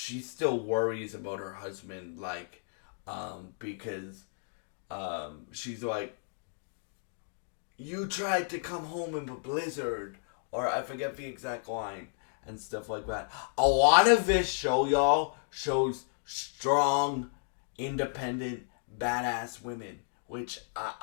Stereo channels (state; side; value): silent; right; digital silence